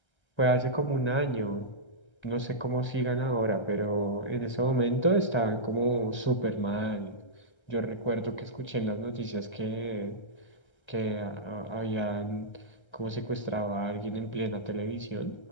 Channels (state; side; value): late; right; 1.3 ms